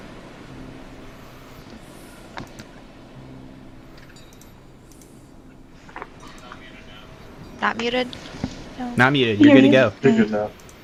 Not muted? No. Not muted. You're good to go. You're good now.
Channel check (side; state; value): both; identical; correlation 1.00